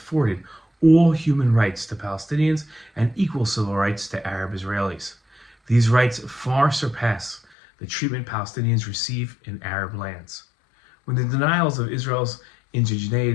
all human rights to Palestinians and equal civil rights to Arab Israelis. These rights far surpass the treatment Palestinians receive in Arab lands. When the denials of Israel's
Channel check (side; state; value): right; drops out; at 7.4 s